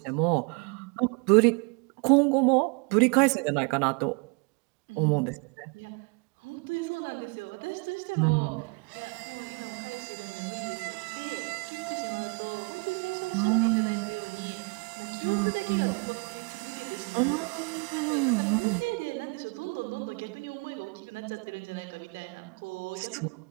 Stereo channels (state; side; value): quieter; left; 32.9 dB